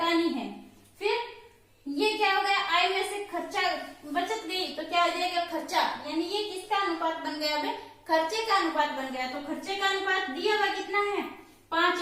है। फिर ये क्या हो गया आय में से खर्चा बचत गई तो क्या आ जाएगा खर्चा। यानी ये किसका अनुपात बन गया अब खर्चे का अनुपात बन गया। तो खर्चे का अनुपात दिया हुआ कितना है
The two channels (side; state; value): both; identical; correlation 1.00